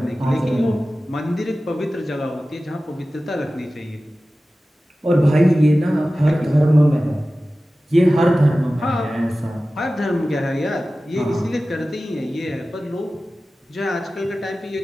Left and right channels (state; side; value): normal; both; correlation 0.95